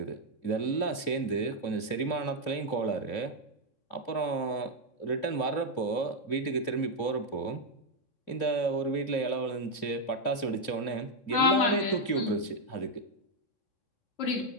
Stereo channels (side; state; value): right; late; 2.9 ms